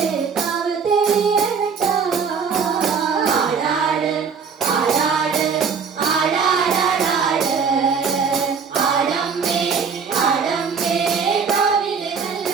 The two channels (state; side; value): quieter; left; 5.9 dB